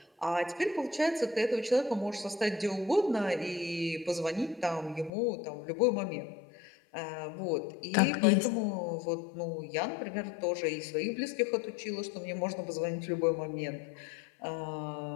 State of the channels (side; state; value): right; drops out; at 5.1 s